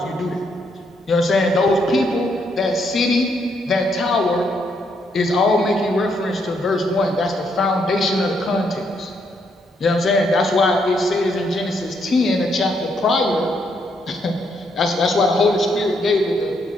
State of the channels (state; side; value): normal; both; correlation 0.75